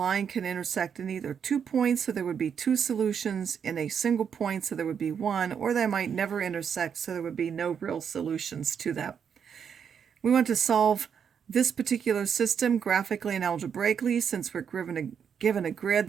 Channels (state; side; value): quieter; left; 7.4 dB